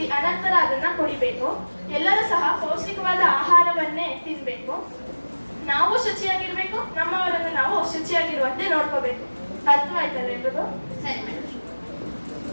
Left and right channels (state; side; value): inverted; both; correlation -1.00